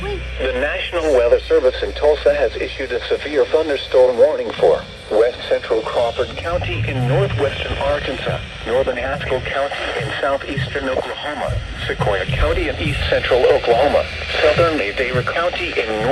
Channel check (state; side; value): identical; both; correlation 1.00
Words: The National Weather Service in Tulsa has issued a severe thunderstorm warning for west central Crawford County in northwestern Arkansas, northern Haskell County in southeastern Oklahoma, Sequoia County in east central Oklahoma, southern Madera County in